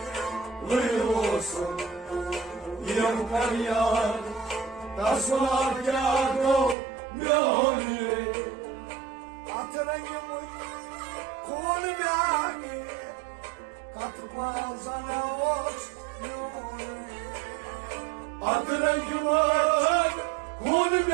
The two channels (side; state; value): left; drops out; at 6.8 s